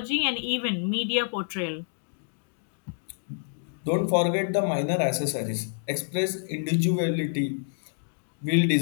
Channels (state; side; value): silent; right; digital silence